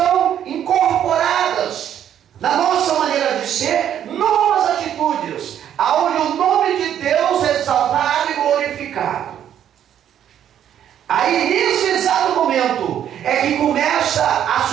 incorporadas na nossa maneira de ser, novas atitudes, aonde o nome de Deus é exaltado e glorificado. Aí nesse exato momento é que começa a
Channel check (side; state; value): left; quieter; 10.1 dB